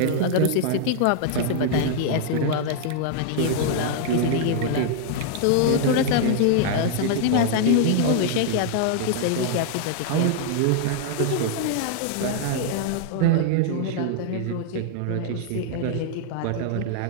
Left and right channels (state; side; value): different; both; correlation -0.01